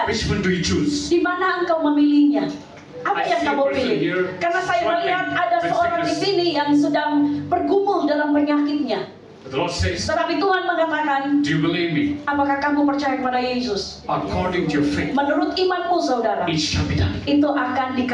Which one do you choose? di mana engkau memilihnya? Apa I yang see a kamu person pilih? here Karena saya melihat struggling ada with seorang di sickness. sini yang sedang bergumul dalam penyakitnya. The Lord says, Tetapi Tuhan mengatakan, do you believe me? apakah kamu percaya kepada Yesus? According to your faith, Menurut imanmu, saudara, it shall be done. itu akan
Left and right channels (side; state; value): both; identical; correlation 1.00